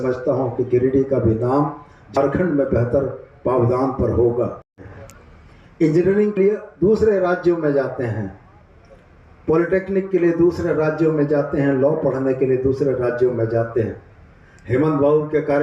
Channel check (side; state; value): both; identical; correlation 1.00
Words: हूं कि गिरिडीह का भी नाम झारखंड में बेहतर पावदान पर होगा। इंजीनियरिंग के लिए दूसरे राज्यों में जाते हैं, पॉलिटेक्निक के लिए दूसरे राज्यों में जाते हैं, लॉ पढ़ने के लिए दूसरे राज्यों में जाते हैं। हेमंत बाबू के